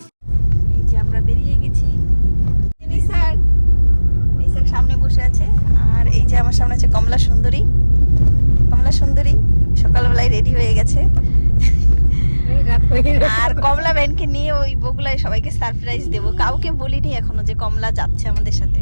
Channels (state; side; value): inverted; both; correlation -1.00